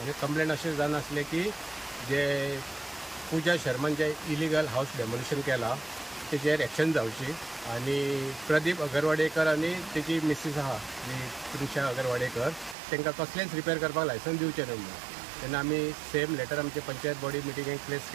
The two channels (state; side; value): drops out; left; at 12.8 s